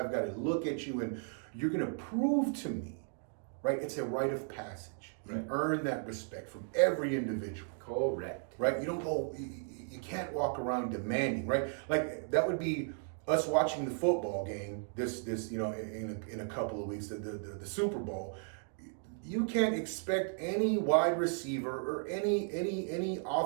got to look at you, and you're gonna prove to me, right? It's a rite of passage. You earn that respect from every individual. Correct. Right? You don't go, you can't walk around demanding, right? Like that would be us watching the football game this in a couple of weeks, the Super Bowl. You can't expect any wide receiver or any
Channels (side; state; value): left; silent; 54 dB below the other